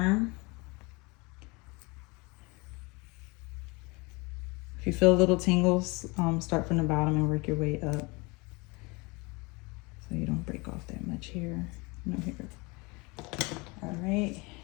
If you feel little tingles, start from the bottom and work your way up. So you don't break off that much hair. No hair. All right.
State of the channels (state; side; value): quieter; right; 26.7 dB